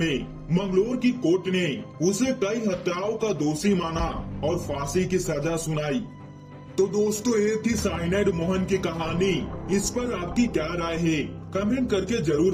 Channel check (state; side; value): identical; both; correlation 1.00